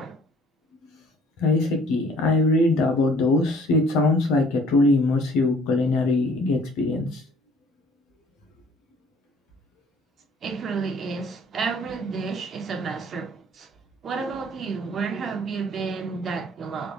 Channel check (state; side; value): normal; both; correlation 0.55